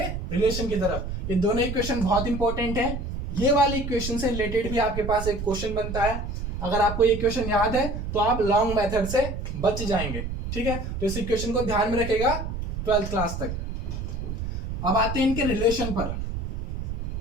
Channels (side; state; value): right; noise; rumble, 5 dB below the sound